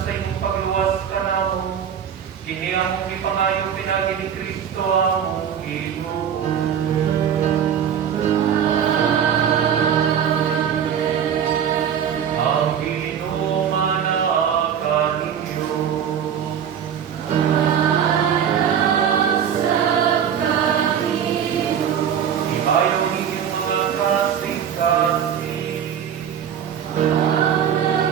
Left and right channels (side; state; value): left; quieter; 8.5 dB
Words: imong pagluwas ka namo, kini among ipangayo pinagi ni Kristo among Ginoo.